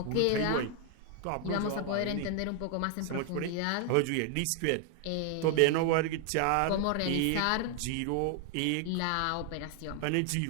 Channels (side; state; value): both; different; correlation 0.00